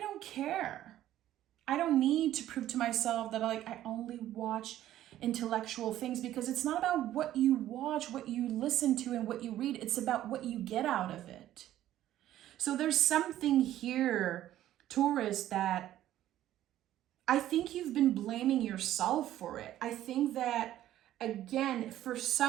care. I don't need to prove to myself that I only watch intellectual things, because it's not about what you watch, what you listen to, and what you read. It's about what you get out of it. So there's something here, Taurus, that I think you've been blaming yourself for it. I think that, again, for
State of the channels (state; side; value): quieter; left; 13.0 dB